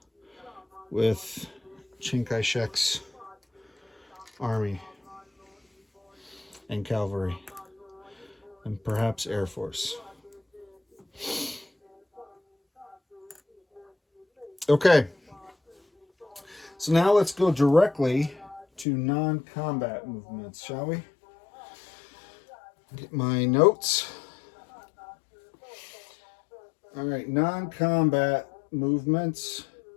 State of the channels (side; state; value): right; drops out; at 18.9 s